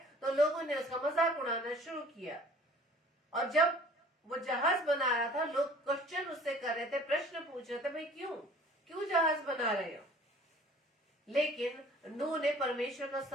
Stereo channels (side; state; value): both; normal; correlation 0.50